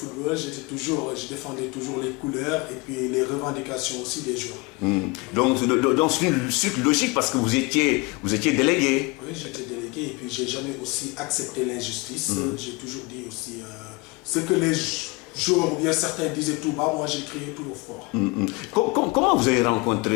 je défendais toujours les couleurs et puis les revendications aussi des joueurs. Donc c'est une suite logique parce que vous étiez délégué. Oui, j'étais délégué et puis j'ai jamais aussi accepté l'injustice. J'ai toujours dit aussi ce que les joueurs ou bien certains disaient tout bas, moi j'ai crié tout au fort. Comment vous avez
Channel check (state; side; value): quieter; right; 26.3 dB